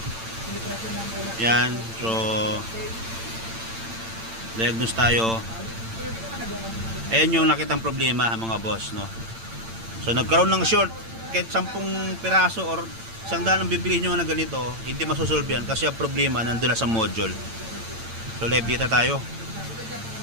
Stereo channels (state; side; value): late; left; 8.9 ms